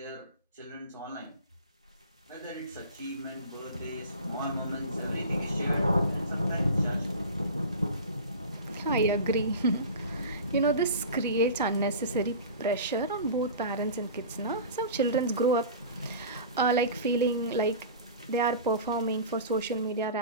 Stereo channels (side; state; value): both; inverted; correlation -0.35